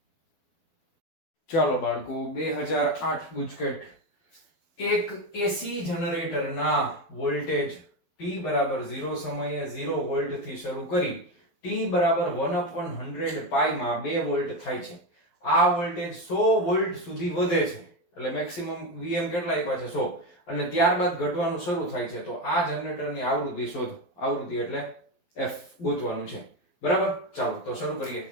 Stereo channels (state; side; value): late; right; 12 ms